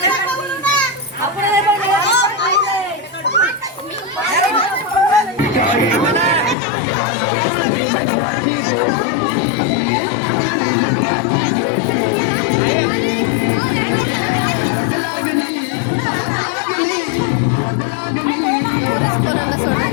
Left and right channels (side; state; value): right; drops out; at 6.6 s